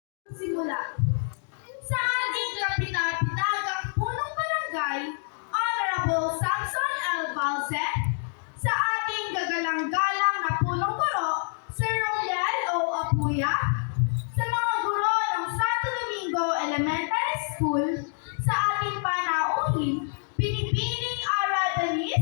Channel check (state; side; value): silent; right; 60 dB below the other